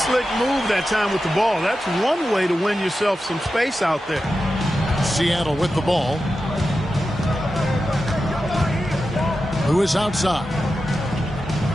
move that time with the ball. That's one way to win yourself some space out there. Seattle with the ball. Lewis outside.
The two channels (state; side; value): normal; both; correlation 0.91